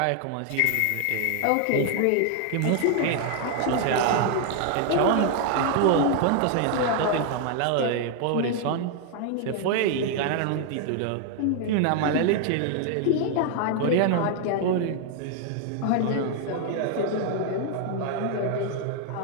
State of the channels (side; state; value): both; different; correlation 0.00